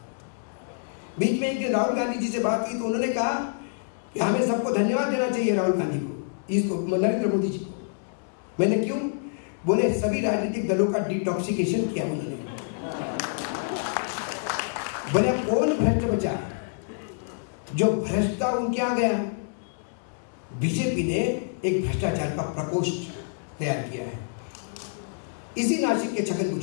बीच में एक दिन राहुल गांधी जी से बात की तो उन्होंने कहा कि हमें सबको धन्यवाद देना चाहिए राहुल गांधी को, इसको नरेंद्र मोदी जी को। मैंने क्यों? बोले सभी राजनीतिक दलों का डिटॉक्सिकेशन किया उन्होंने। बोले कौन भ्रष्ट बचा? जो भ्रष्ट था उनके आ गया। बीजेपी ने एक भ्रष्टाचार का प्रकोष्ठ तैयार किया है। इसी नासिक के छगन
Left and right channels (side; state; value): right; silent; digital silence